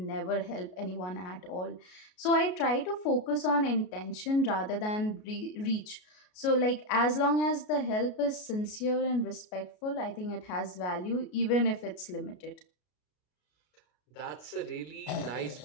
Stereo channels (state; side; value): late; right; 33 ms